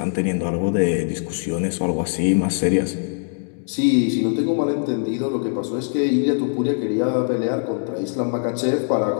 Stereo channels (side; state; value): right; silent; digital silence